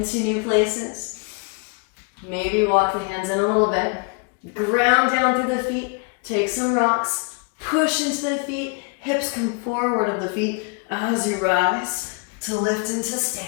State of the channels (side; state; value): right; quieter; 35.5 dB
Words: new places, maybe walk the hands in a little bit, ground down through the feet, take some rocks, push into the feet, hips come forward of the feet as you rise to lift into